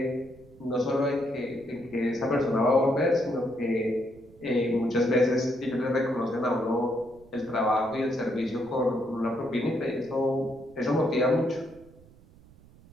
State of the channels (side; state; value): right; noise; rumble, 25 dB below the sound